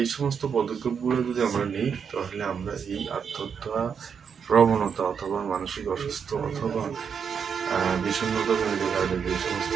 সমস্ত পদক্ষেপগুলো যদি আমরা নিই তাহলে আমরা এই আত্মহত্যা প্রবণতা অথবা মানসিক অসুস্থ অথবা বিষণ্ণতা জনিত কারণে যে সমস্ত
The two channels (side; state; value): left; quieter; 6.8 dB